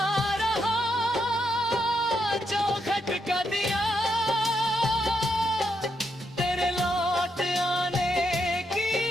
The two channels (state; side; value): normal; both; correlation 0.80